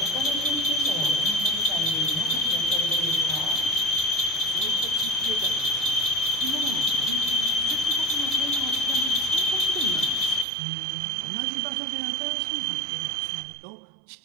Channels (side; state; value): left; drops out; at 10.5 s